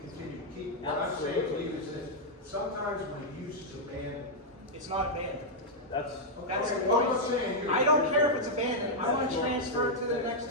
to keep. What I'm saying to you is that sometimes when a use is abandoned. It's not abandoned. That's, That's the Okay, well, I'm not point. saying you. I don't care if it's abandoned. I want to transfer it to the next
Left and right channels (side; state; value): both; normal; correlation -0.03